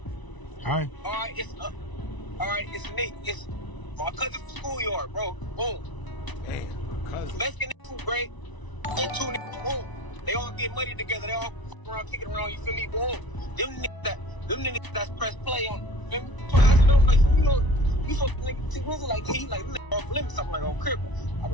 right. All right, it's Nate. It's my cousin from schoolyard, bro. Boom. Damn, cousin. Mexican food great. And 2 niggas, boom. They all get money together. They all fuck around, kicking around, you feel me? Boom. Them niggas that's press play on, you feel me? So I asked them, like, you know, you fuck nigga T Grizzly, like, he like, off limits, something like, on crib. I'm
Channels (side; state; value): right; late; 1.0 ms